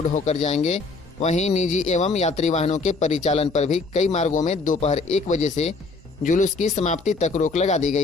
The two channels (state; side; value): quieter; right; 3.9 dB